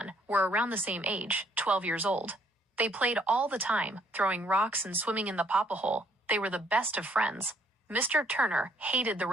were around the same age, 12 years old. They played all the time, throwing rocks and swimming in the papa hole. They were the best of friends. Mr. Turner hated the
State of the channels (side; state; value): both; normal; correlation 0.66